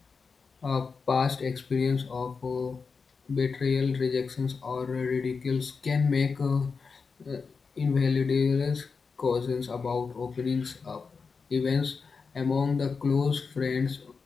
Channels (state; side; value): quieter; right; 5.0 dB